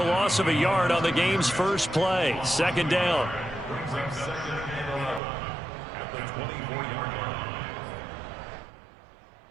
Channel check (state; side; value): drops out; left; at 5.2 s